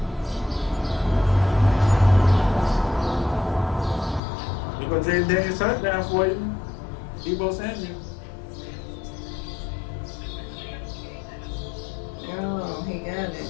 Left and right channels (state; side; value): drops out; right; at 4.2 s